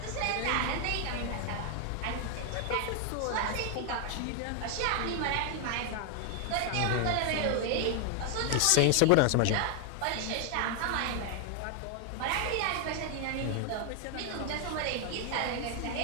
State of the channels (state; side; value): different; both; correlation 0.00